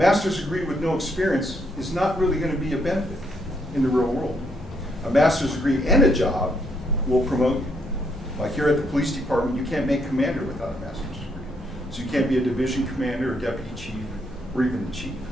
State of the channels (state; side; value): normal; both; correlation 0.74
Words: degree with no experience is not really going to be a benefit in the real world. A master's degree and a job will promote you. Like here at the police department, you can't make commander without a master's degree. So you can't be a division commander or deputy chief or even the chief